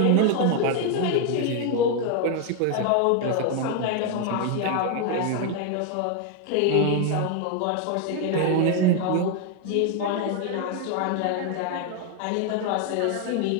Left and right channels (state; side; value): different; both; correlation 0.01